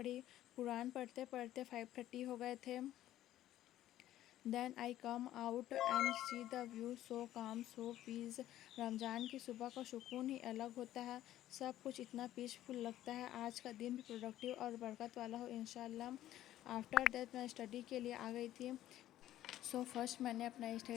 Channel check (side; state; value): right; quieter; 13.3 dB